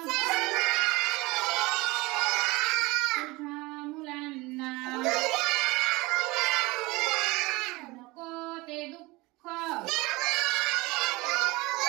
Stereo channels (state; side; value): quieter; left; 22.8 dB